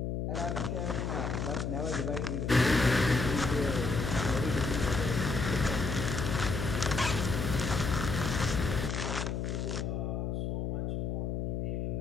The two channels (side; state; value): left; noise; hum, 1 dB below the sound